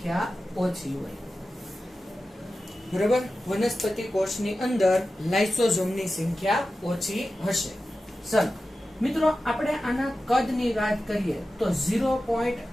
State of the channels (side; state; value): both; normal; correlation 0.93